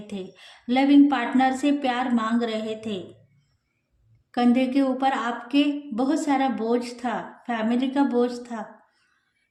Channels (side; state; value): both; identical; correlation 1.00